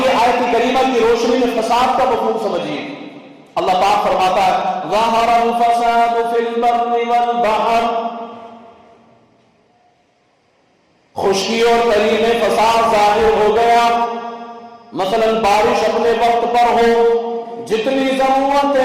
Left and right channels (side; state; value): both; identical; correlation 1.00